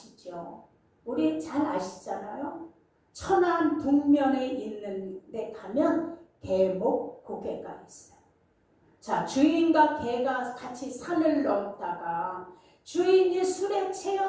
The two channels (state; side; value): identical; both; correlation 1.00